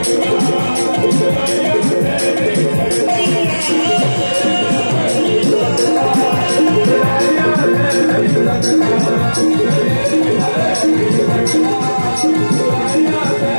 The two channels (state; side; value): inverted; both; correlation -1.00